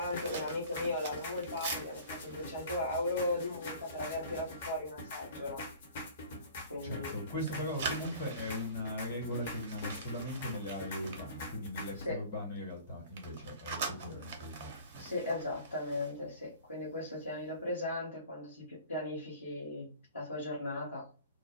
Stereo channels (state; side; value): inverted; both; correlation -0.45